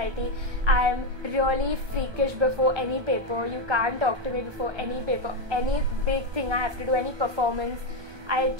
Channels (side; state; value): left; late; 1.3 ms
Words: I'm really freakish before any paper. You can't talk to me before any paper. Any big thing I have to do, any performance, I